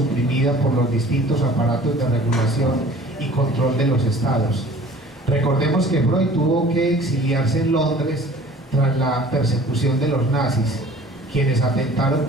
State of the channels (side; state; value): both; normal; correlation 0.48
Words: por los distintos aparatos de regulación y control de los estados. Recordemos que Freud tuvo que exiliarse en Londres tras la persecución de los nazis, quienes atentaron